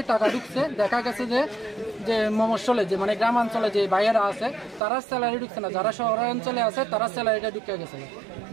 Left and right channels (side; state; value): left; drops out; at 4.8 s